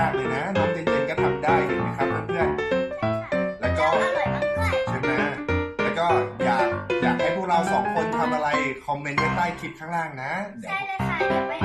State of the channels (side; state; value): both; identical; correlation 1.00